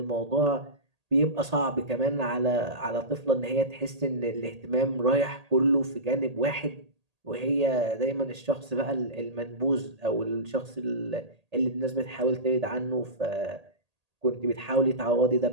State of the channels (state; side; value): late; left; 1.8 ms